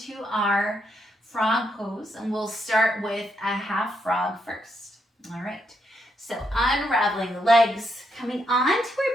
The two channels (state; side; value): normal; both; correlation 0.78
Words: our frog pose, and we'll start with a half frog first. All right, so unraveling the legs, coming onto our